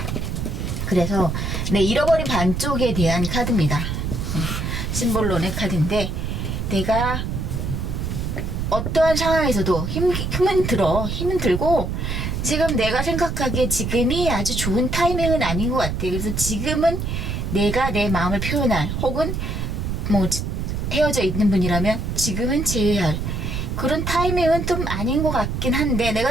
그래서 잃어버린 반쪽에 대한 카드입니다. 심볼론의 카드인데, 내가 어떠한 상황에서도 힘은 들고, 지금 내가 생각하기에 지금이 아주 좋은 타이밍은 아닌 것 같아. 그래서 지금은 내가 내 마음을 표현할, 혹은 뭐 헤어져 있는 분이라면 지금은 제외할 그런 타이밍은 좀 아닌 것 같긴 한데,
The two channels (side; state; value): right; noise; rumble, 3 dB below the sound